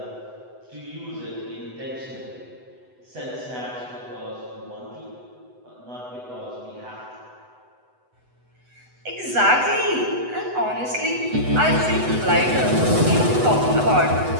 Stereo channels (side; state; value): left; late; 8.0 ms